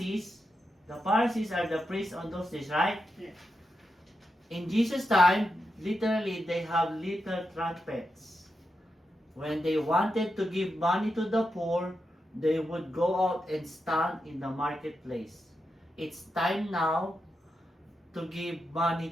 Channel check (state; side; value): normal; both; correlation 0.87